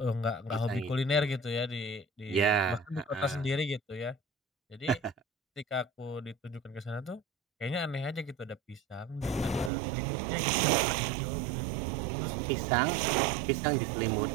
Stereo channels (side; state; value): left; drops out; at 9.7 s